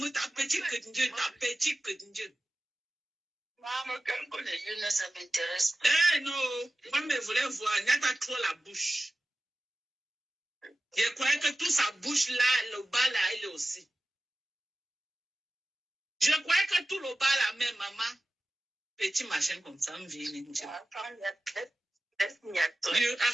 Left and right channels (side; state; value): both; normal; correlation 0.95